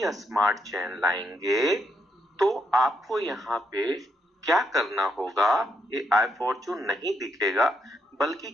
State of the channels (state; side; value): normal; both; correlation 0.78